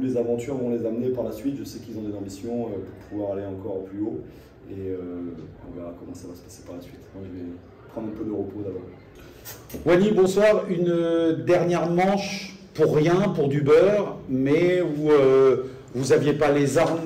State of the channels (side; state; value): both; identical; correlation 1.00